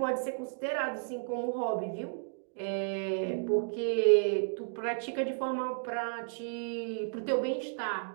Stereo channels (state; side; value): silent; left; digital silence